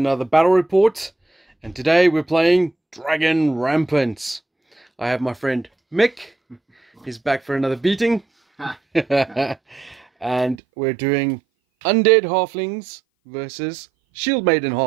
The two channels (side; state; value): left; drops out; at 10.6 s